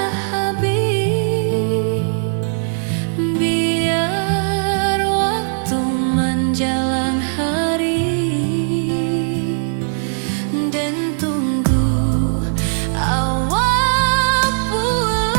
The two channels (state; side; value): silent; left; digital silence